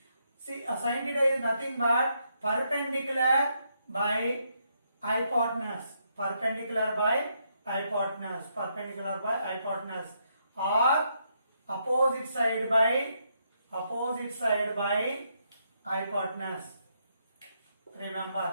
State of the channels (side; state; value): both; inverted; correlation -0.77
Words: See, sin theta is nothing but perpendicular by hypotenuse. Perpendicular by hypotenuse. Perpendicular by hypotenuse. Or opposite side by hypotenuse.